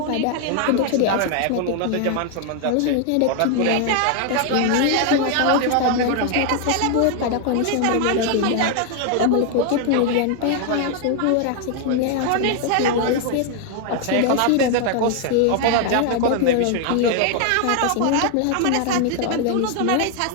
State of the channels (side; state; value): both; different; correlation 0.00